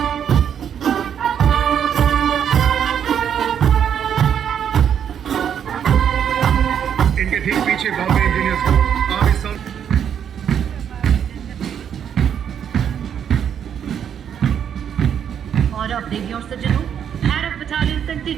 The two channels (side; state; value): left; quieter; 8.6 dB